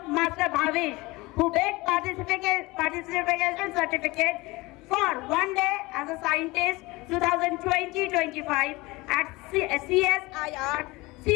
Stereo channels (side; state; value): right; quieter; 22.1 dB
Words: Master Bhavish, who takes participation certificate for one day as a scientist 2020-25 at CSIR